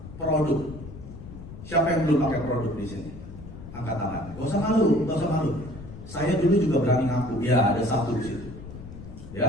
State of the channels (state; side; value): noise; left; rumble, 13 dB below the sound